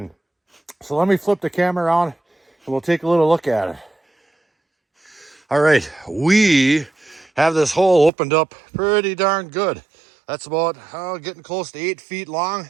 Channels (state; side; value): drops out; left; at 8.1 s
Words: So let me flip the camera around and we'll take a little look at it. All right, we have this hole opened up pretty darn good. That's about getting close to 8 feet long.